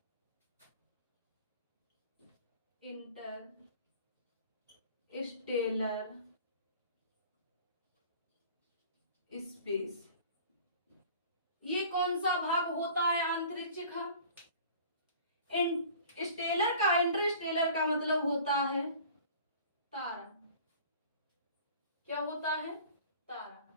इंटरस्टेलर स्पेस ये कौन सा भाग होता है अंतरिक्ष का? स्टेलर का, इंटरस्टेलर का मतलब होता है तारा। क्या होता है? तारा।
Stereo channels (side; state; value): both; inverted; correlation -0.46